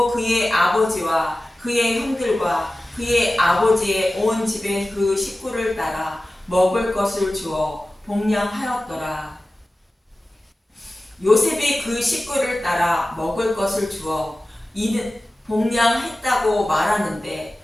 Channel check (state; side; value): normal; both; correlation 0.96